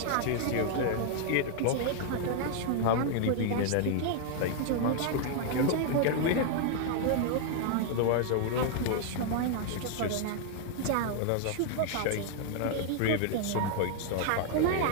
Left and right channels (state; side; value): different; both; correlation 0.00